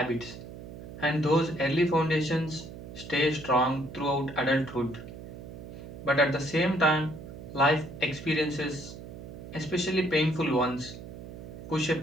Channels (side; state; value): right; noise; hum, 12 dB below the sound